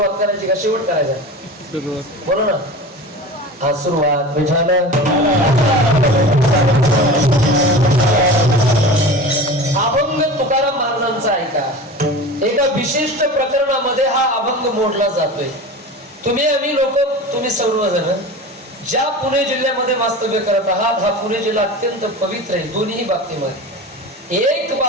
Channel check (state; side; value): normal; both; correlation 0.33